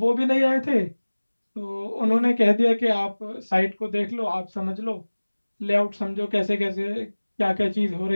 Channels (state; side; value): inverted; both; correlation -1.00